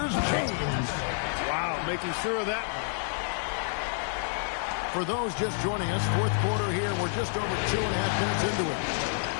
James. Wow, making sure of that. For those just joining us, fourth quarter here. We're just over 2.5 minutes into it.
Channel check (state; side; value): silent; right; digital silence